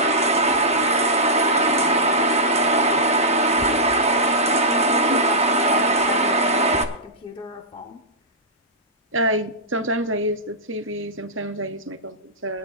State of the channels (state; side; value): normal; both; correlation -0.15